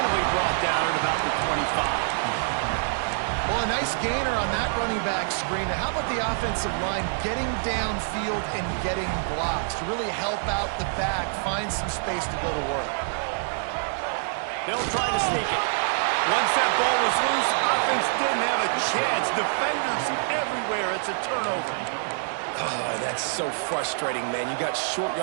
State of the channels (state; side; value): silent; left; 61 dB below the other